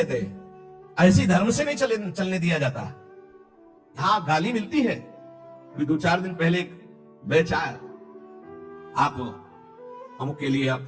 हैं, ऐसी धर्म से नहीं चलने दिया जाता। हाँ गाली मिलती है। अभी 2-4 दिन पहले एक बैच आया, आप हम के लिए आप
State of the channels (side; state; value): both; identical; correlation 1.00